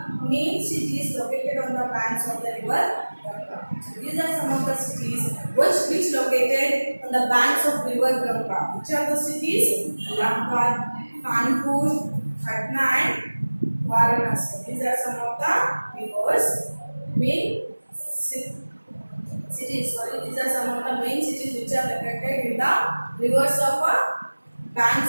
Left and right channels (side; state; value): both; inverted; correlation -1.00